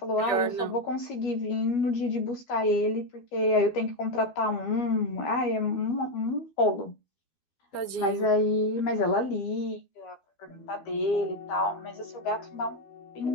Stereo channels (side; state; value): right; late; 12 ms